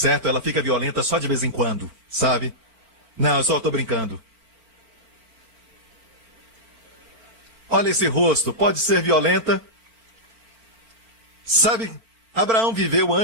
Ela fica violenta só de vez em quando, sabe? Não, eu só estou brincando. Olha esse rosto, pode ser violenta. Sabe, Abraão viveu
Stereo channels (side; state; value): left; late; 4.4 ms